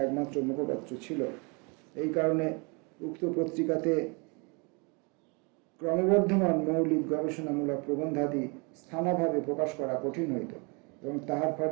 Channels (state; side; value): quieter; left; 31.6 dB